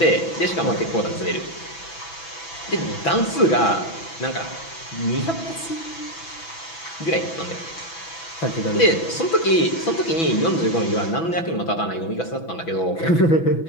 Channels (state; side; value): late; right; 6.0 ms